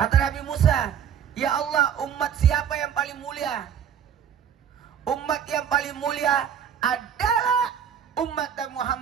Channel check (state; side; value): quieter; left; 8.5 dB